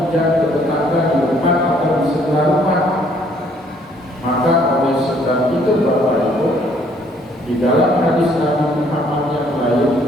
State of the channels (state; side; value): normal; both; correlation 0.63